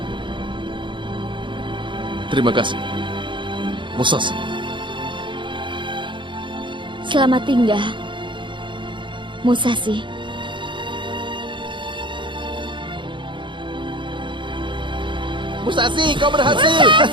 Terima kasih, Musashi. Selamat tinggal, Musashi. Musashi, kau berhasil!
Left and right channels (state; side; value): late; left; 0.23 ms